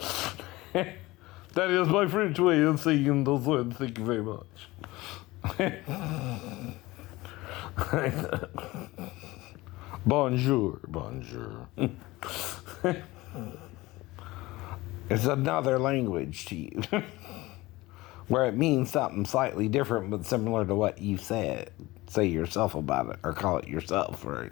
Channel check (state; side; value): quieter; right; 20.0 dB